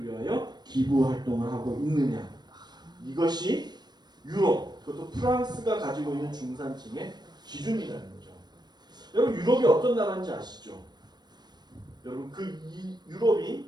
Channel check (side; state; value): left; late; 0.20 ms